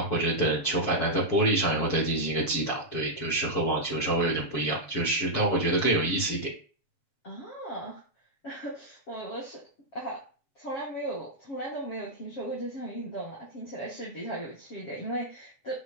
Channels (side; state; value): right; late; 7.4 ms